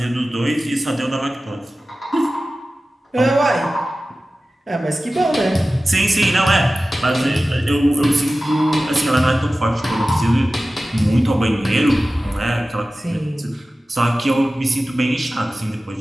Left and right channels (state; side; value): normal; both; correlation 0.96